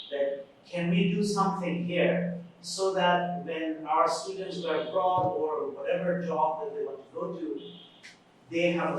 can we do something here so that when our students go abroad or whatever job that they want to go to, they have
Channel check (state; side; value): identical; both; correlation 1.00